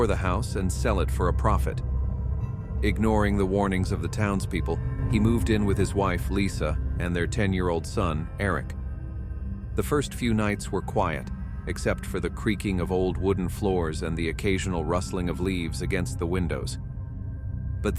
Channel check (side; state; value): both; identical; correlation 1.00